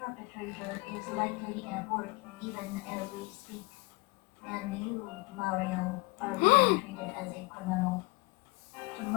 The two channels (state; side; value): quieter; right; 25.8 dB